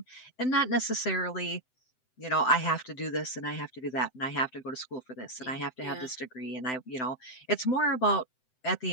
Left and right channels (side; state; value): right; late; 7.9 ms